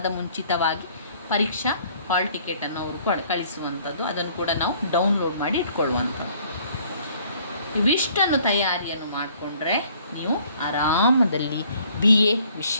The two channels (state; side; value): inverted; both; correlation -0.59